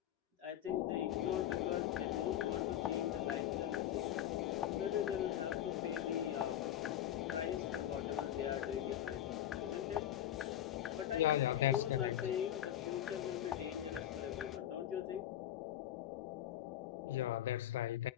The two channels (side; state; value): right; quieter; 11.8 dB